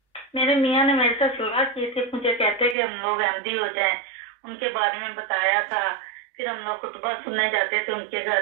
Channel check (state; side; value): drops out; left; at 2.8 s